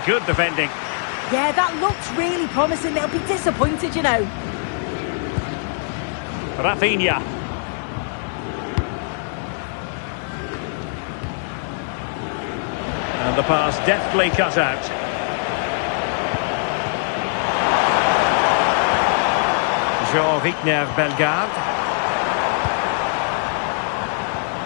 good defending. Yeah, that looked really promising. They'll be disappointed, you know. Rafinha. And the pass deftly cut out. Jean-Richner Bellegarde.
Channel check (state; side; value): silent; right; 64 dB below the other